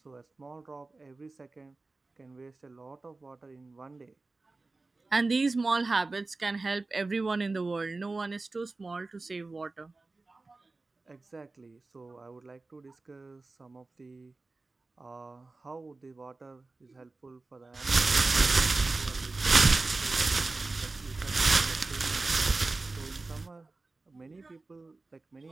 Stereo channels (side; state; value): left; quieter; 3.4 dB